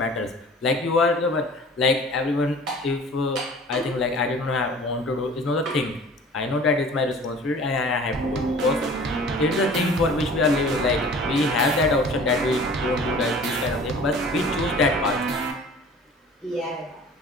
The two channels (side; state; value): both; normal; correlation 0.45